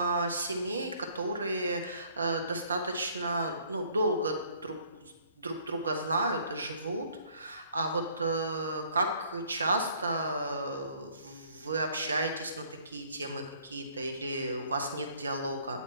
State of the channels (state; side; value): inverted; both; correlation -0.59